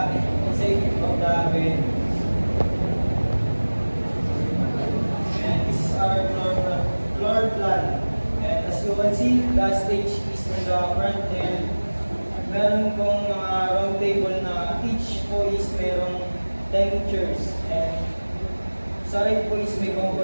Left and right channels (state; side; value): inverted; both; correlation -1.00